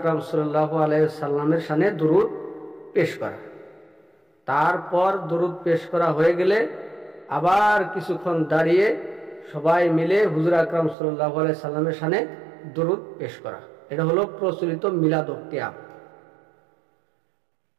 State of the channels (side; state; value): left; drops out; at 11.0 s